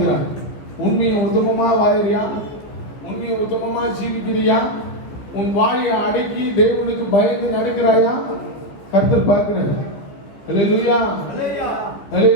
உண்மையை உத்தமமா வாழறியா? உண்மையை உத்தமமா ஜீவிக்கிறியா? உன் வாயை அடக்கி தேவனுக்கு பயந்து நடக்கிறாயா? கர்த்தர் பார்க்கிறார். அல்லேலூயா.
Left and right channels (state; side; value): late; right; 14 ms